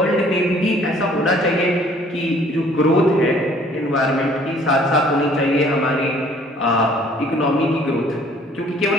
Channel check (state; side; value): normal; both; correlation 0.57